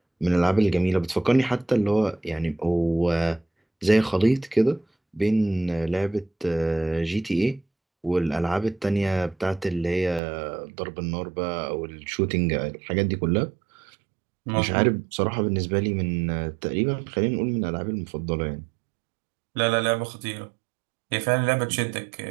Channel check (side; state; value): left; drops out; at 10.2 s